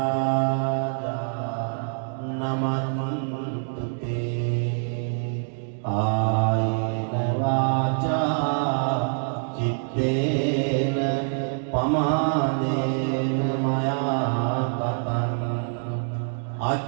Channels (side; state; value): left; silent; 61 dB below the other